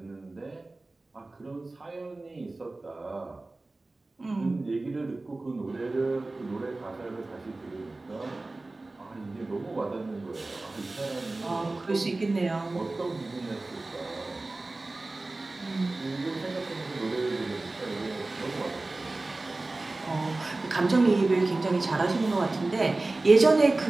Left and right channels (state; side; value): quieter; left; 3.1 dB